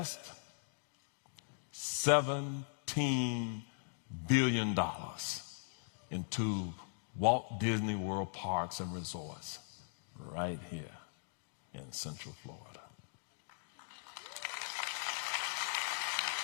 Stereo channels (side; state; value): right; silent; digital silence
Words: $17 billion into Walt Disney World parks and resorts right here in Central Florida.